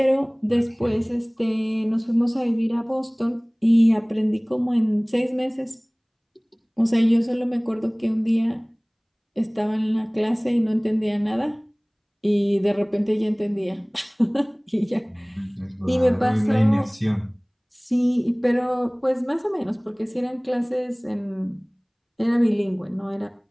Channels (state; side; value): identical; both; correlation 1.00